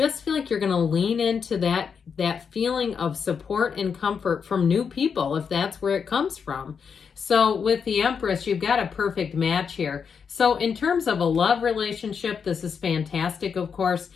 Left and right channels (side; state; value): right; quieter; 6.4 dB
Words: feel like you're going to lean into that feeling of support and comfort from new people, if that's where it comes from. So with the Empress, you've got a perfect match here. So in terms of a love relationship, this is fantastic, of course.